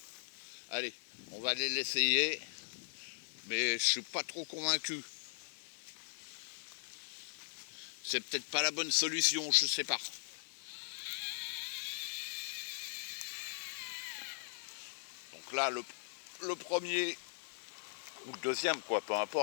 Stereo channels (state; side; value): silent; right; digital silence